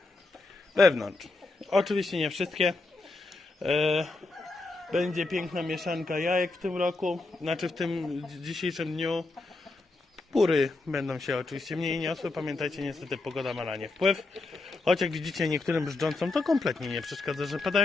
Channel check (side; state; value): right; quieter; 3.3 dB